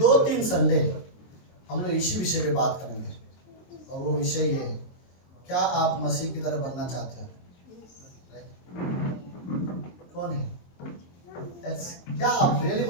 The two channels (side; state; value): right; late; 23 ms